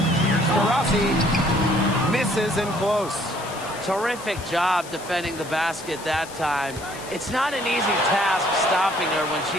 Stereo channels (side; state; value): left; noise; hiss, 16 dB below the sound